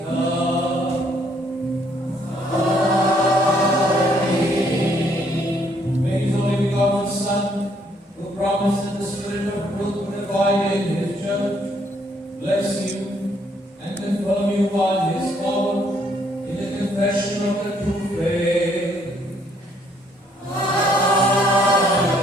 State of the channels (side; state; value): both; normal; correlation 0.68